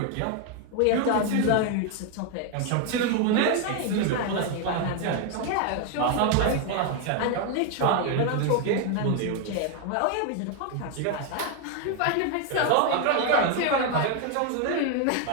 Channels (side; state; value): both; different; correlation 0.01